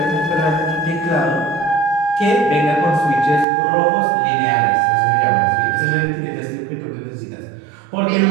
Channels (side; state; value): left; drops out; at 3.5 s